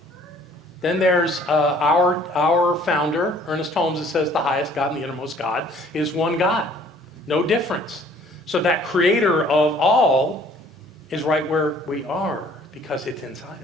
Then there's our founder, Ernest Holmes, that says the highest God and the innermost God is one God. No difference. So that creator of all is right where we are, because it's inside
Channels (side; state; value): both; normal; correlation 0.56